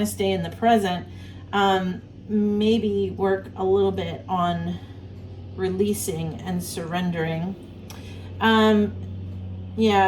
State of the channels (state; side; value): identical; both; correlation 1.00